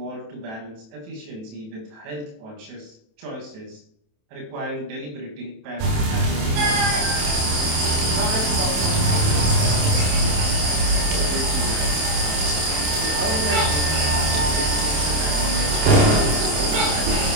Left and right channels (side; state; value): left; late; 27 ms